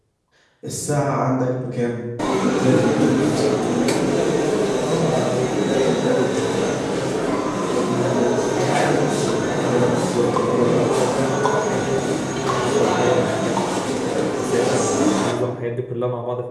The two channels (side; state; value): both; identical; correlation 1.00